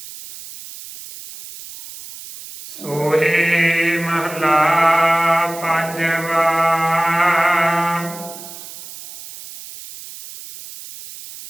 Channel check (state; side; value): noise; right; hiss, 14 dB below the sound